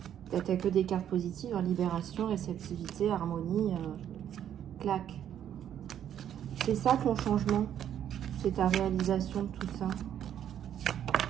T'as que des cartes positives, hein, libération, réceptivité, harmonie, clac. C'est ça ton changement, c'est ta réalisation de tout ça.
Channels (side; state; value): left; quieter; 10.0 dB